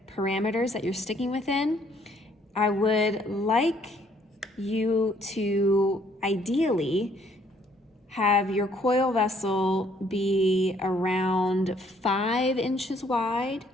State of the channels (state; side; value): normal; both; correlation 0.64